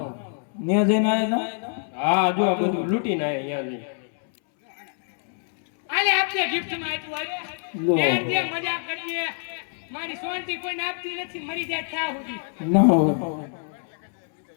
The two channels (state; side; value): silent; right; 62 dB below the other